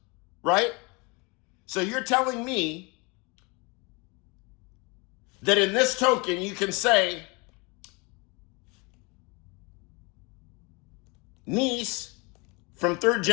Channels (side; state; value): right; quieter; 28.5 dB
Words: right? So you're telling me that in this token you can say niece from 3rd